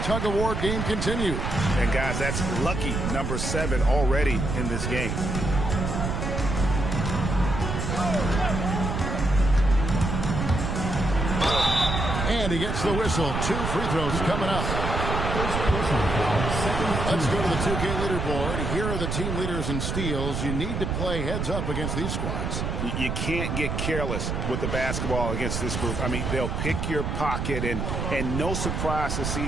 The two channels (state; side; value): noise; right; rumble, 2 dB below the sound